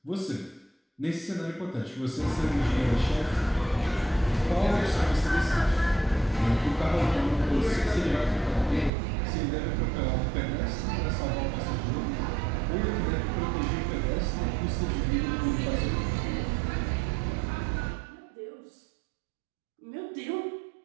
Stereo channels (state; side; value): drops out; left; at 8.9 s